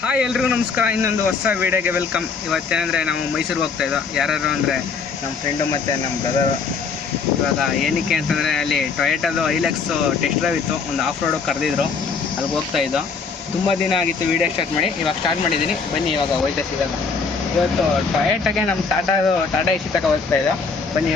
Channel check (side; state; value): right; quieter; 5.1 dB